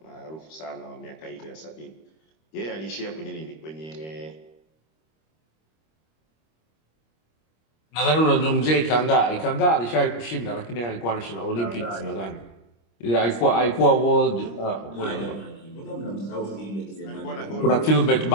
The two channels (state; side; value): late; right; 25 ms